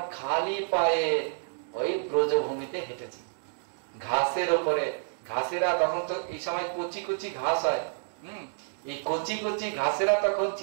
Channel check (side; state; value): left; silent; digital silence